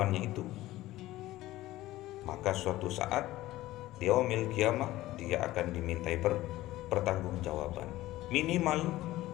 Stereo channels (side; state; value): right; quieter; 16.4 dB